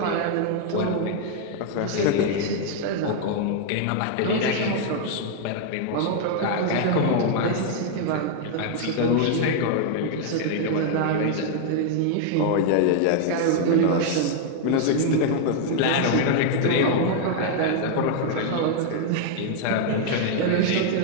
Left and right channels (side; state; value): both; different; correlation 0.00